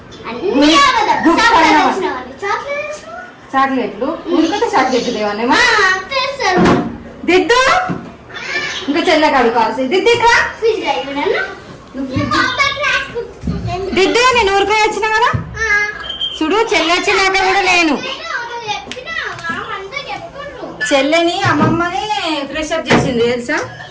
చాక్లెట్లు ఉడికితే చాక్లెట్లు దేవనేమా దిద్దు ఇంకా చెల్ల కడుకోవాల్సి దిద్దు ఇక్కడ దిద్దు నేను ఊరికే వచ్చిన కదా చూడు. చెల్లి వచ్చినాక కూడా నేను చెల్లెని అమ్మమ్మని ఫ్రెష్ అప్ చేసింది తెలుసా.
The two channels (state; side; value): identical; both; correlation 1.00